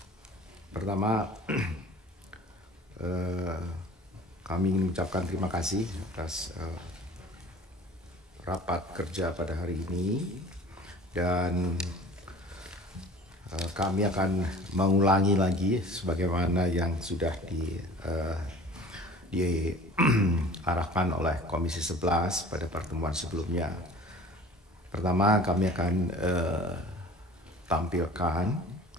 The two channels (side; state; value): both; normal; correlation 0.45